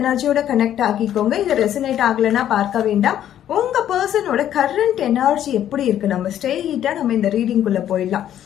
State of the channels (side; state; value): right; quieter; 10.9 dB